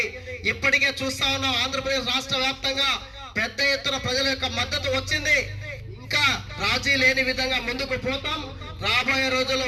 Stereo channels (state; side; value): identical; both; correlation 1.00